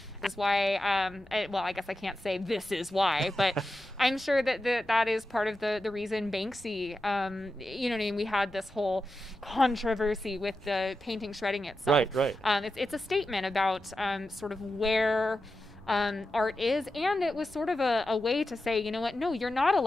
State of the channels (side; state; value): both; normal; correlation 0.91